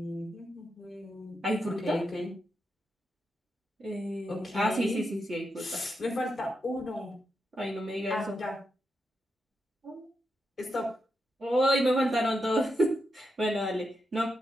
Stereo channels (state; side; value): normal; both; correlation 0.85